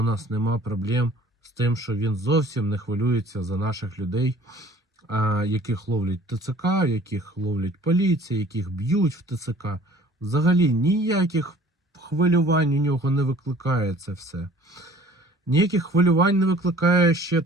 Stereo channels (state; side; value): normal; both; correlation 0.51